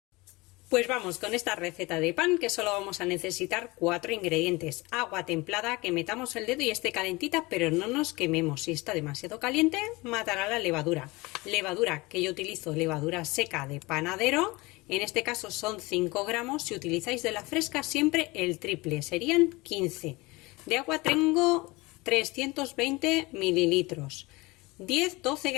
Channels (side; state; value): right; quieter; 23.1 dB